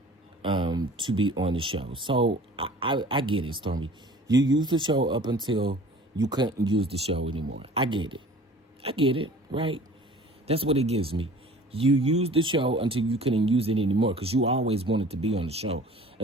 to be on the show. So I get it, Stormi. You used the show up until you couldn't use the show anymore. I get it, right? That's what it gives me. You used the show until you couldn't use it anymore because you always wanted to be on the show.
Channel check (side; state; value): both; normal; correlation 0.46